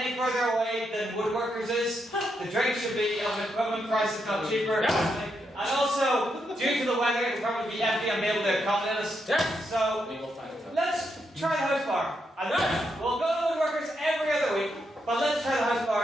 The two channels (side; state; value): both; normal; correlation 0.81